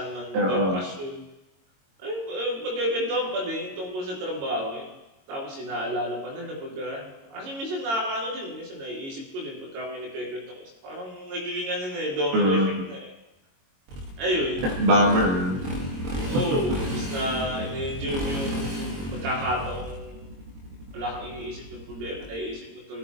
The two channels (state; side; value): late; left; 22 ms